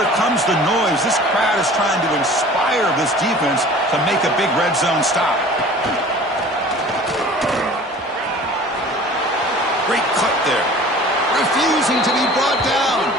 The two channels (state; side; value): normal; both; correlation 0.45